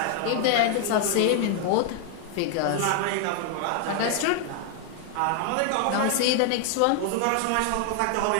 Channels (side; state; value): both; different; correlation 0.00